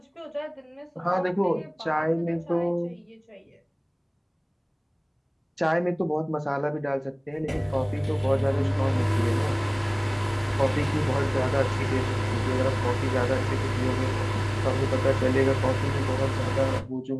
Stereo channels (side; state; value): both; identical; correlation 1.00